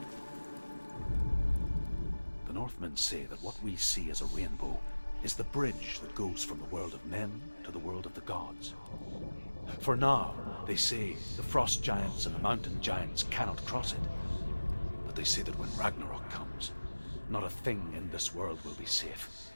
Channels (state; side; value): inverted; both; correlation -1.00